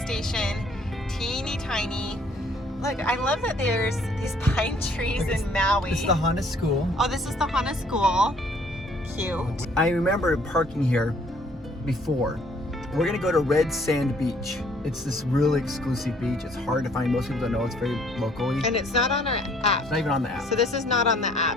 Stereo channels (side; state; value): both; normal; correlation 0.61